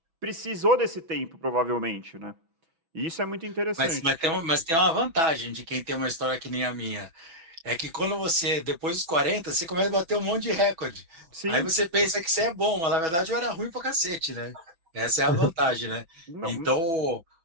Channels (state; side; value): late; left; 6.1 ms